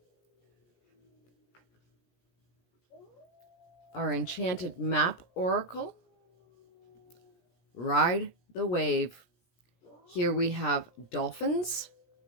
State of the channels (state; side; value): late; right; 17 ms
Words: Our enchanted map oracle, Ride the Wave. Here we have dolphins